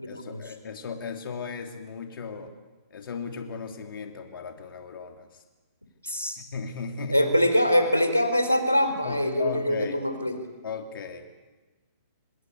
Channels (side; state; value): both; inverted; correlation -0.84